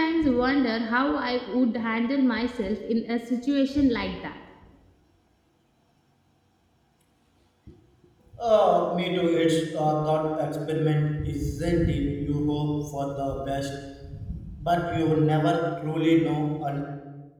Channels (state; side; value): identical; both; correlation 1.00